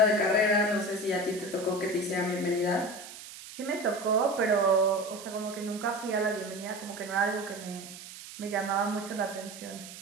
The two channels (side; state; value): right; noise; hiss, 14 dB below the sound